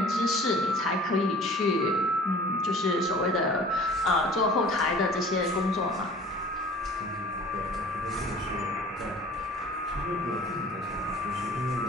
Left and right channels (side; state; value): both; normal; correlation 0.46